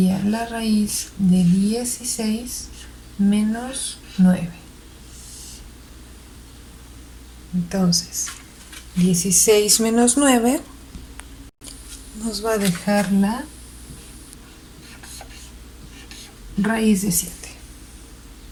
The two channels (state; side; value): identical; both; correlation 1.00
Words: la raíz de 16 menos 9. Entonces, 16 menos 9 nos va a dejar la raíz de 7.